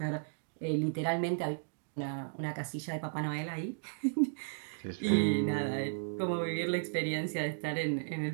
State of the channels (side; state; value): left; silent; digital silence